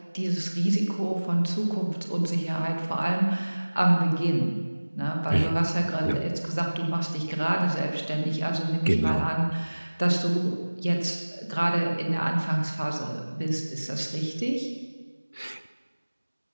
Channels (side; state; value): both; inverted; correlation -1.00